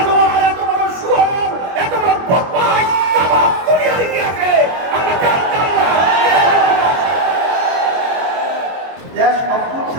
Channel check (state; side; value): late; left; 22 ms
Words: এত বড় শুয়োর, এত বড় বদমাশ তামাম দুনিয়ায় আছে আমরা জানতাম না। দেশ